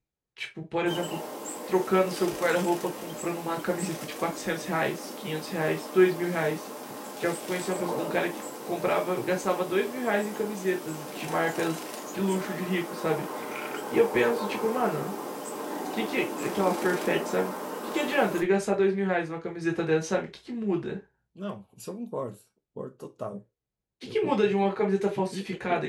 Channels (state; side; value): identical; both; correlation 1.00